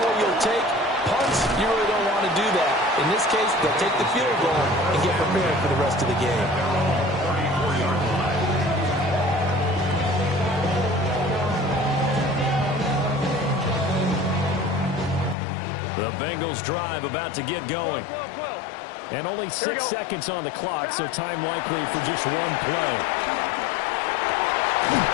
you'll take. Punts, you really don't want to do that. In this case, they'll take the field goal and get prepared for the rest of the game. The Bengals drive about to get going. And only 6 seconds on the clock, so time likely for just one play.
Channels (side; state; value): right; drops out; at 15.4 s